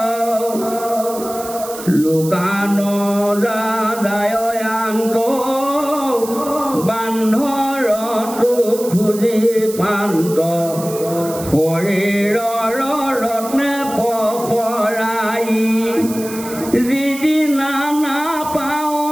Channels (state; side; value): noise; right; hiss, 13 dB below the sound